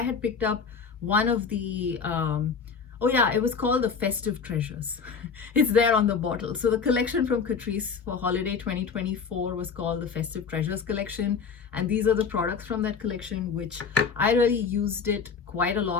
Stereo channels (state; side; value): quieter; right; 5.7 dB